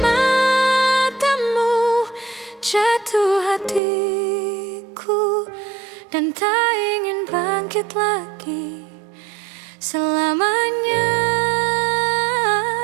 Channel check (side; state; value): left; drops out; at 3.8 s